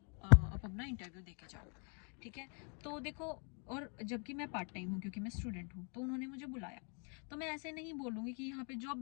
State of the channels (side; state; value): right; quieter; 38.6 dB